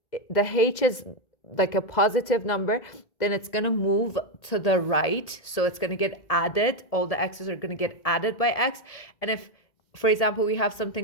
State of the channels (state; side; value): late; right; 1.8 ms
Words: the h is like a positive number, then it's going to move to the right, so it's going to get added. All the x's are going to get added by x. And if, for example, we have